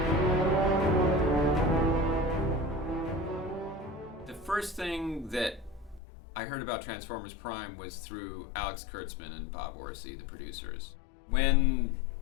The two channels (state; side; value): drops out; right; at 6.0 s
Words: The first thing that I heard about Transformers Prime was through Alex Kurtzman and Bob Orsi, the producers. When